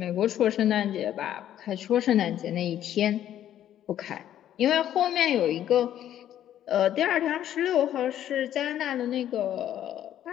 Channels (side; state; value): right; quieter; 11.3 dB